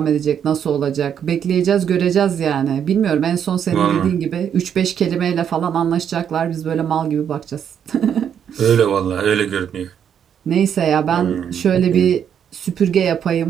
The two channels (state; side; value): quieter; left; 8.5 dB